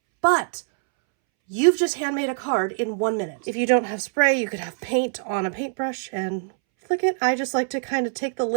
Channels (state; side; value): silent; left; 63 dB below the other